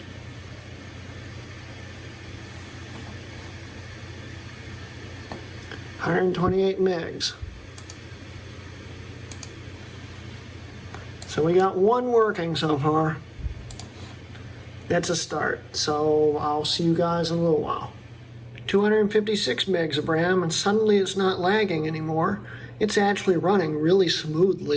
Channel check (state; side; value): identical; both; correlation 1.00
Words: $128 megs. So we got one working so far. That's a start. So I'll see you guys in a little while. 256 megs of RAM, and suddenly it's not lagging anymore. It's actually running really